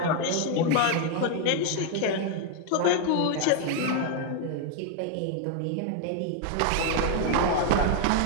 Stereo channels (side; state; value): both; different; correlation 0.00